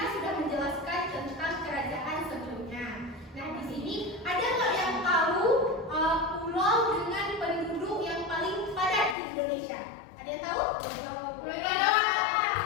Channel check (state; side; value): drops out; right; at 9.2 s